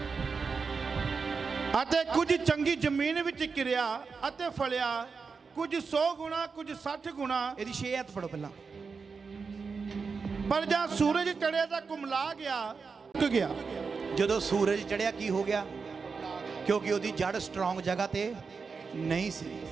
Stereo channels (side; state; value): left; quieter; 5.1 dB